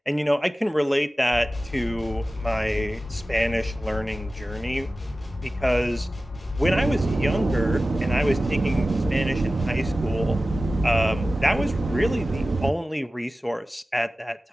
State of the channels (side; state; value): both; normal; correlation 0.95